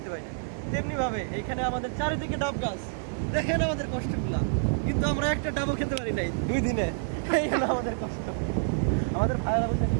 পাই না। তেমনিভাবে এইখানে আমাদের চারিদিকে ডাব গাছ। দেখেন আমাদের কষ্টগুলা, কিন্তু আমরা একটা ডাবও খেতে পারি নাই 2 দিনে। এই হলো আমাদের কষ্ট। আমাদের ভাইয়েরা বলতে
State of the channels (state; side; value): silent; left; digital silence